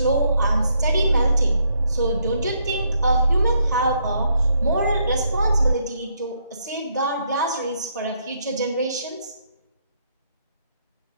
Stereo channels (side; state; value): both; inverted; correlation -0.73